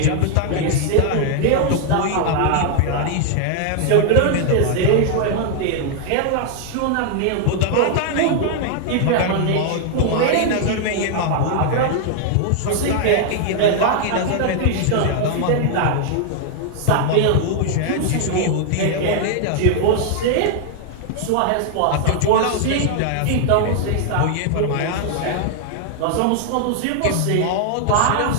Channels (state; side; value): different; both; correlation 0.00